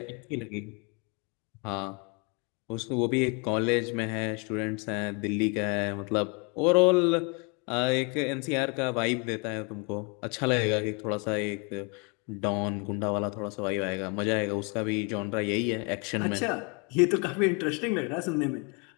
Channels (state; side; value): quieter; right; 33.1 dB